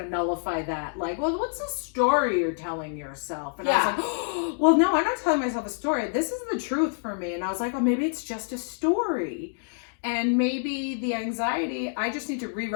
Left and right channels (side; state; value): right; silent; digital silence